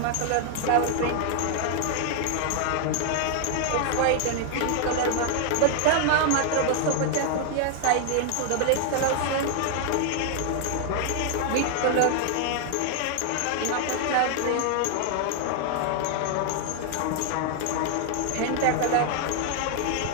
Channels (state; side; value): different; both; correlation 0.00